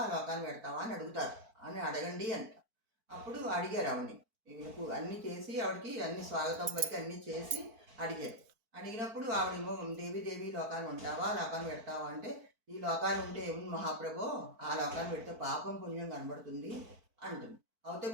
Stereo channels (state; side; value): late; left; 4.5 ms